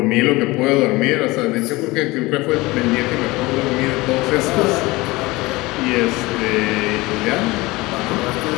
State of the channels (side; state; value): right; quieter; 21.6 dB